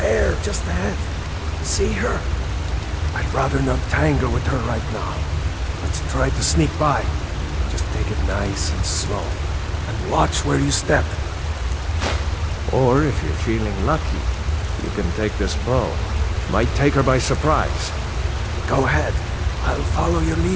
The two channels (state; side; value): identical; both; correlation 1.00